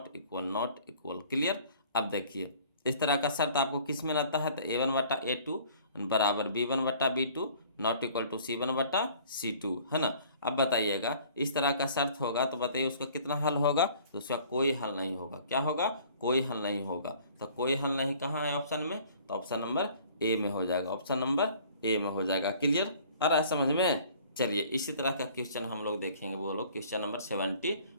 equal, not equal. Clear, अब देखिए इस तरह का शर्त आपको किस में रहता है, तो A1/A2 बराबर B1/B2 not equal to C1/C2, है ना। अब बताइएगा इस तरह का शर्त होगा तो बताइए उसका कितना हल होगा, तो उसका कोई हल नहीं होगा। क्या होगा, कोई हल नहीं होगा। तो कोई हल नहीं कहाँ है ऑप्शन में, तो ऑप्शन नंबर ए में हो जाएगा, ऑप्शन नंबर ए में हो जाएगा। क्लियर, आ रहा है समझ में। चलिए इसी तरह का क्वेश्चन हम लोग देखेंगे, वो लोग क्वेश्चन नंबर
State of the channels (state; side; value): inverted; both; correlation -0.52